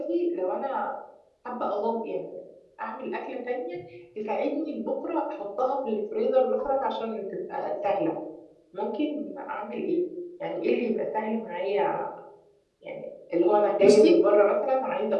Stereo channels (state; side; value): identical; both; correlation 1.00